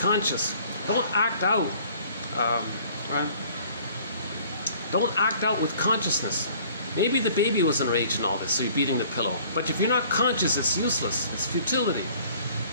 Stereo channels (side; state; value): both; inverted; correlation -0.54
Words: Don't act out. Right? Don't act out with consciousness. Maybe the baby was enraged in all this, so you're beating the pillow. But if you're not conscious, it's useless. It's futility.